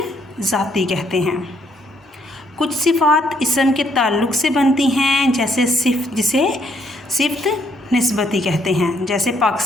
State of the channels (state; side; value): normal; both; correlation 0.70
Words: ज़ाती कहते हैं। कुछ सिफ़ात इसम के ताल्लुक़ से बनती हैं, जैसे जिसे सिफ़्त निस्बती कहते हैं, जैसे